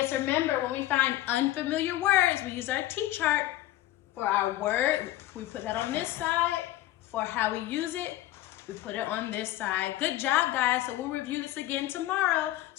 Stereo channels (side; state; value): right; quieter; 15.1 dB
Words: remember when we find unfamiliar words, we use our T-chart for our word. We put that on this side. For how we use it, we put it on this side. Good job, guys. So we'll review this again tomorrow.